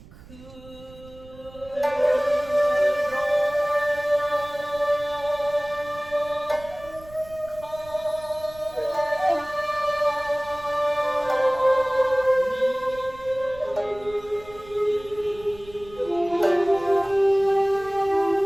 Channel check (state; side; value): noise; right; rumble, 20 dB below the sound